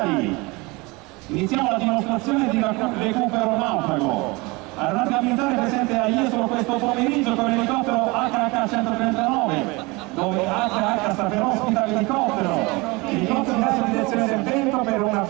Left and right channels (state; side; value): quieter; left; 24.9 dB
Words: iniziamo la dimostrazione di recupero naufrago. Aeronautica militare presente a Jesolo questo pomeriggio con l'elicottero HH-139, dove HH sta per ospita l'elicottero. L'elicottero dà in direzione del vento per un